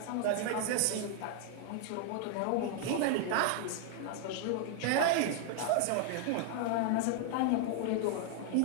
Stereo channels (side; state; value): both; different; correlation 0.00